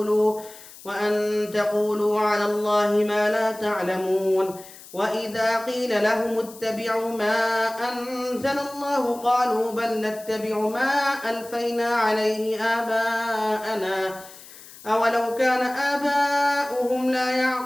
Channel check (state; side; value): noise; left; hiss, 19 dB below the sound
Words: وأن تقولوا على الله ما لا تعلمون وإذا قيل لهم اتبعوا ما أنزل الله قالوا بل نتبع ما ألفينا عليه آباءنا أولو كان آباؤهم لا